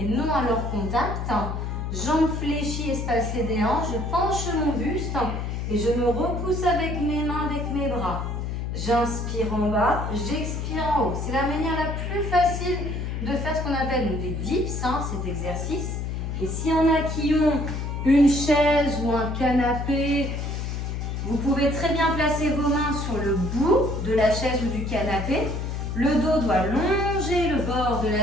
non à leur contact. Jambes fléchies, espacées des hanches. Je penche mon buste. Et je me repousse avec mes mains, avec mes bras. J'inspire en bas, j'expire en haut. C'est la manière la plus facile de faire ce qu'on appelle des dips, hein, cet exercice. Et s'il y en a qui ont une chaise ou un canapé, vous pouvez très bien placer vos mains sur le bout de la chaise ou du canapé. Le dos doit longer le bord de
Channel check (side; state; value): left; noise; hum, 3 dB below the sound